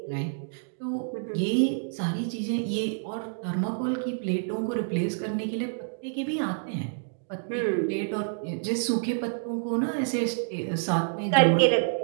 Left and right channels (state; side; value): silent; left; digital silence